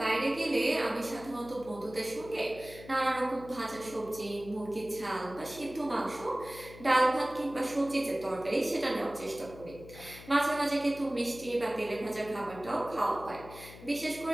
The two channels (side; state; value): left; noise; hum, 16 dB below the sound